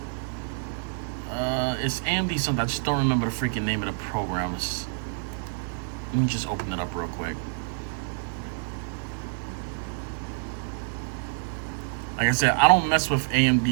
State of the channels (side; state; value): left; silent; digital silence